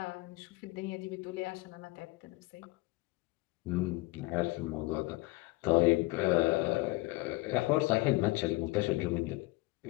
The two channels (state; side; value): quieter; right; 21.7 dB